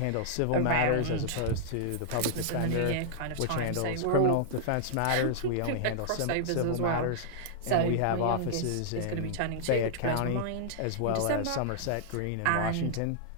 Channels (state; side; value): different; both; correlation -0.01